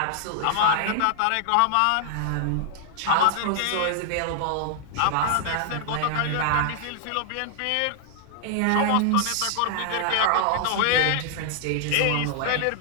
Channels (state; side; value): different; both; correlation -0.01